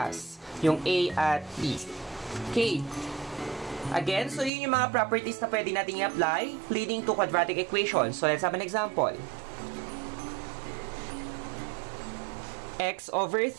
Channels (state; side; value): drops out; left; at 4.5 s